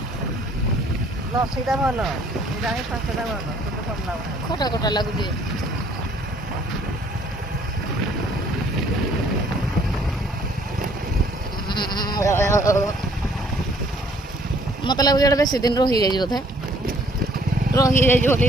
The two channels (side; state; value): both; normal; correlation 0.60